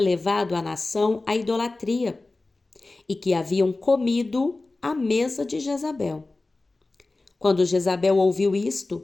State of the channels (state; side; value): quieter; right; 3.2 dB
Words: a nação à idolatria e que haviam comido à mesa de Jezabel. Quando Jezabel ouviu